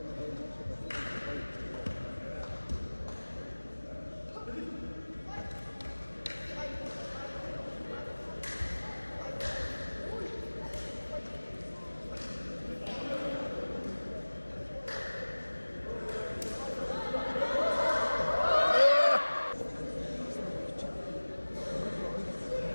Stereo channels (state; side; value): inverted; both; correlation -1.00